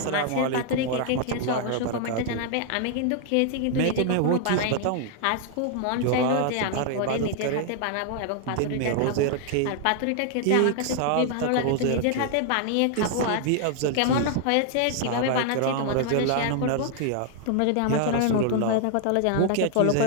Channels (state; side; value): different; both; correlation 0.00